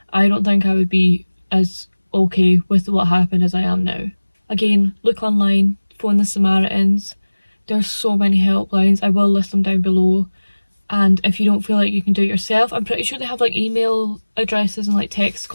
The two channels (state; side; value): inverted; both; correlation -1.00